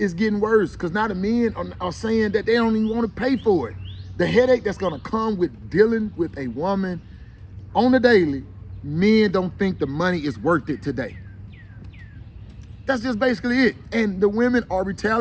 getting worse because now the men are saying that they don't even want to pay for it. The headache that's gonna come with dealing with a woman on the daily, men don't think the money is worth it today. That's just basically it. And the women are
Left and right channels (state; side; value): identical; both; correlation 1.00